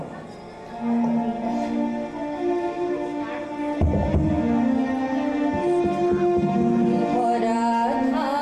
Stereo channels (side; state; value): both; identical; correlation 1.00